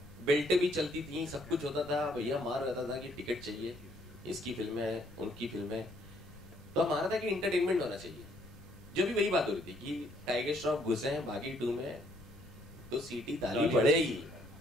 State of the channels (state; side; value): noise; left; rumble, 20 dB below the sound